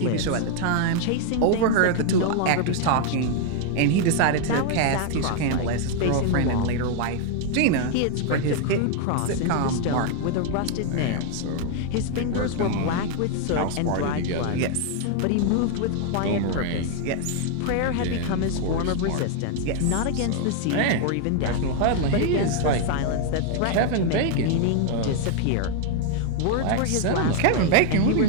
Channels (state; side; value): different; both; correlation 0.00